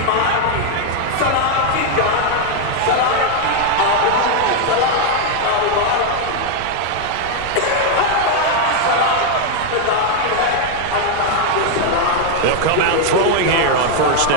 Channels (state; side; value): different; both; correlation 0.00